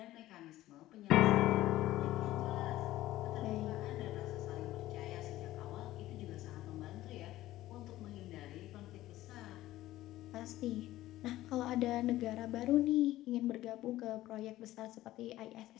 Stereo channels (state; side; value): quieter; right; 15.5 dB